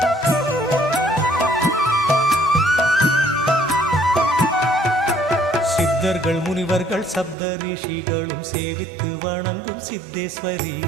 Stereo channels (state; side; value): drops out; left; at 7.4 s